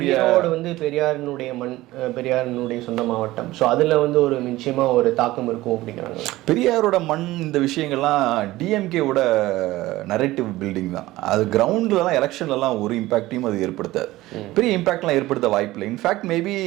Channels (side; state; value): left; quieter; 17.5 dB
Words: பெரியாரினுடைய மண், பெரியாரினுடைய சொந்த மாவட்டம். ஸோ அதுல ஒரு நிச்சயமா ஒரு தாக்கம் இருக்கும் அப்படிங்கிறாங்க. பெரியாரோட மண் இந்த விஷயங்கள்லாம் டிஎம்கேவோட நரேட்டிவ் பில்டிங் தான். அது கிரவுண்ட்லலாம் எலெக்ஷன்லலாம் ஒரு இம்பாக்டையும் அது ஏற்படுத்தாது. பெரிய இம்பாக்ட்லாம் ஏற்படுத்த வாய்ப்பு இல்லை. இன்ஃபேக்ட் மேபி